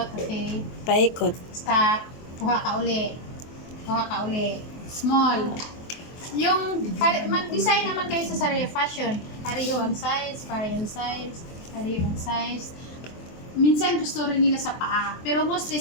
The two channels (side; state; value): right; late; 23 ms